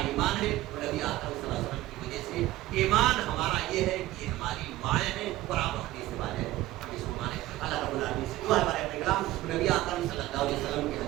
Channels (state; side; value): quieter; left; 16.3 dB